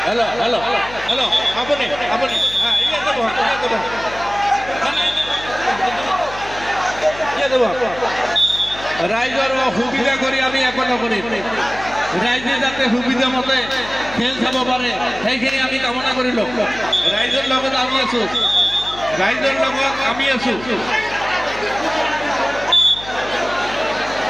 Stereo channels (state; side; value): noise; left; hum, 16 dB below the sound